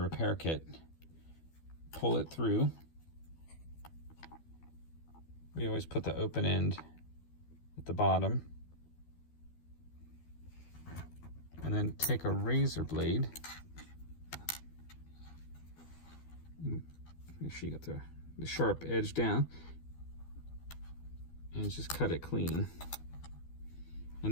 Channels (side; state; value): right; late; 12 ms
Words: repair kit, pull it through. We always put the open end at the bottom, and then take a razor blade. Make sure you got the sharp edge down, and just cut it clean.